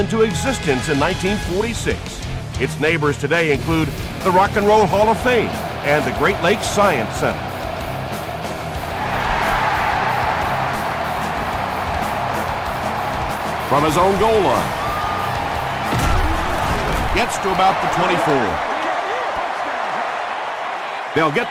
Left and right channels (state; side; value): identical; both; correlation 1.00